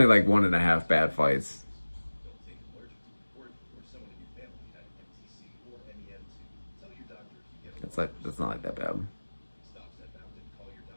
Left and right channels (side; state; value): both; inverted; correlation -1.00